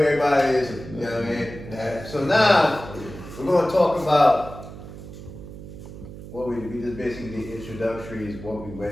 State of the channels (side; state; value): right; noise; hum, 13 dB below the sound